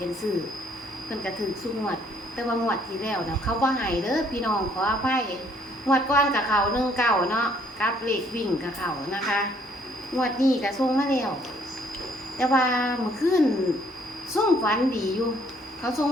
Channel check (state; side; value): normal; both; correlation 0.64